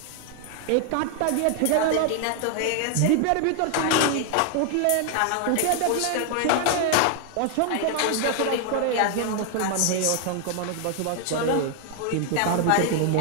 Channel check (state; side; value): different; both; correlation 0.00